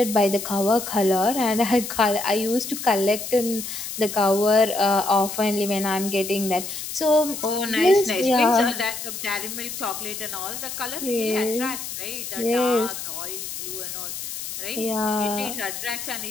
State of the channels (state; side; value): noise; left; hiss, 7 dB below the sound